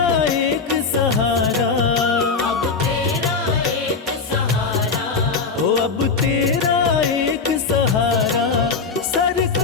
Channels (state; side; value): quieter; right; 4.8 dB